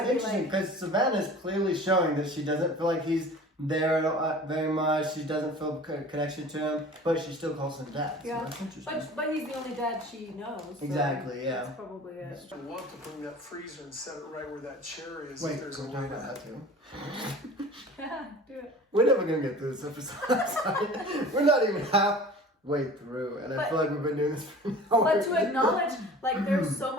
interesting because Savannah's clearly showing that she doesn't feel like he's there very much. She doesn't feel connection to him, but she still calls him Dad. Yeah, so that's interesting. but he's the only dad she knows. So exactly. Yeah. That's probably it. I want to bring that freezer and set it right where that chair is. Wait, if there's can a we talk way about to. that too? Yeah, do it. We're never gonna get through this episode. We're not even halfway through, and I feel like we've been doing this for an hour. But to acknowledge, there's so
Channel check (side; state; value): both; normal; correlation 0.42